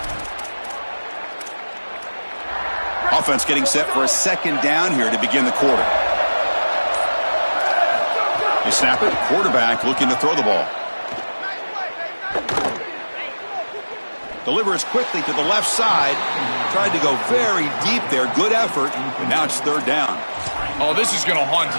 Offense getting set for a 2nd down here to begin the quarter. They snap it. Quarterback looking to throw the ball. Delivers quickly to the left side. Tried to go very deep there. Good effort. And now it's 3rd down. Oh, this is going to haunt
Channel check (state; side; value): inverted; both; correlation -1.00